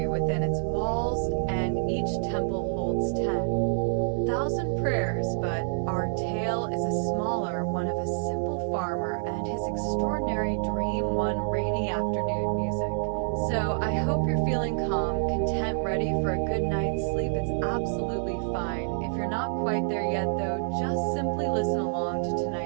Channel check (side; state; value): left; silent; digital silence